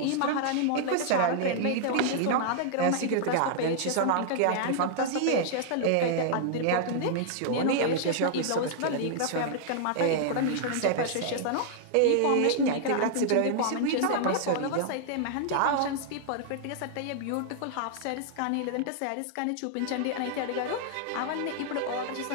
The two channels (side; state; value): both; different; correlation -0.01